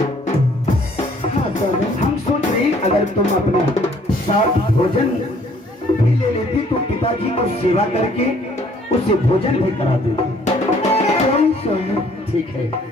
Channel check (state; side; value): normal; both; correlation 0.60